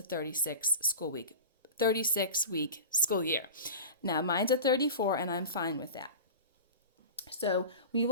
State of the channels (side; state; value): both; inverted; correlation -0.32